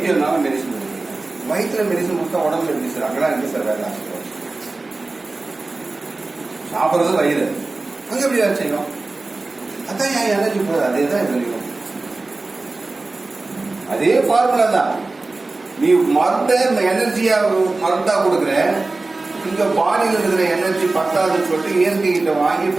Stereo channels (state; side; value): quieter; left; 3.4 dB